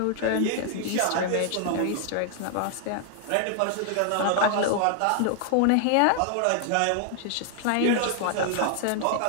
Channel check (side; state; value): both; different; correlation 0.00